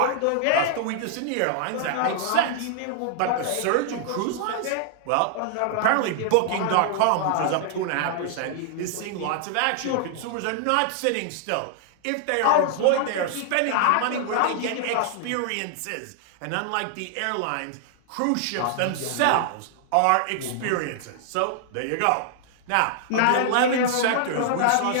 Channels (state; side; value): different; both; correlation -0.01